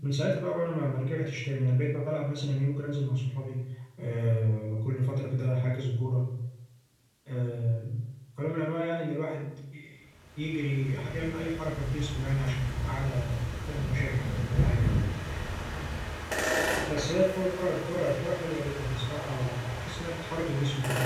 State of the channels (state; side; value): identical; both; correlation 1.00